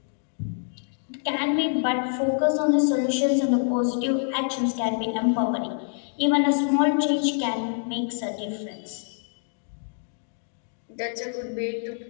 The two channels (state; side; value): silent; right; digital silence